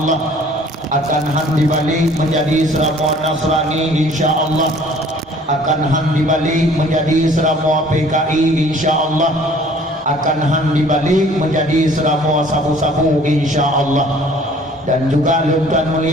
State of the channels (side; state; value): both; normal; correlation 0.53